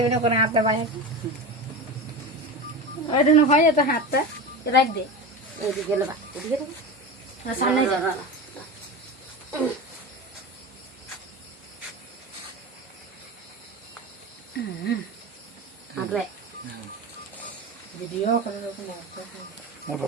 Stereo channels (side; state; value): both; normal; correlation 0.25